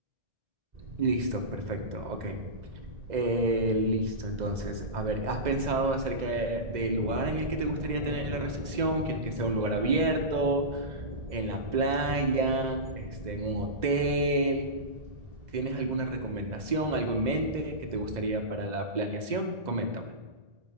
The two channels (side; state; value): left; late; 2.0 ms